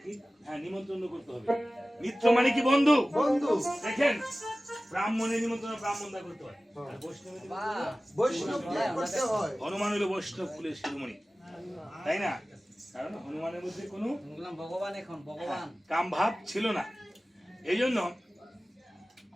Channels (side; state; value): both; normal; correlation 0.97